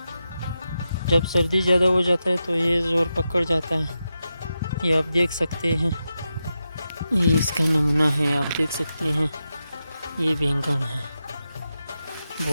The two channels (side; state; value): both; inverted; correlation -0.89